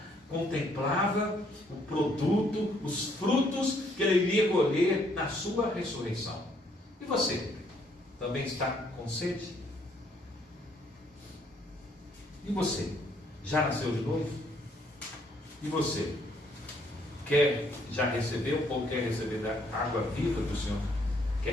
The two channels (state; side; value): normal; both; correlation 0.67